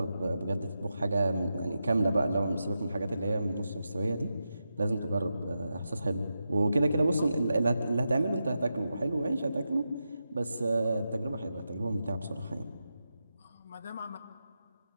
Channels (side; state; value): both; inverted; correlation -0.89